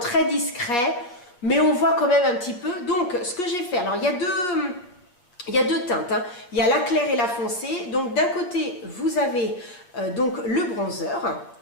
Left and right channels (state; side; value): late; right; 8.4 ms